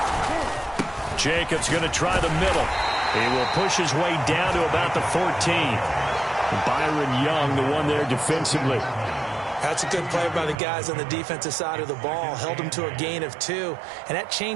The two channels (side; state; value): left; drops out; at 10.6 s